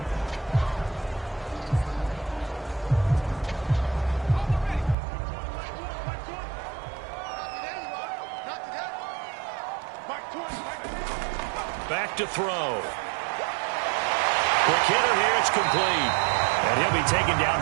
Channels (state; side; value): drops out; left; at 5.0 s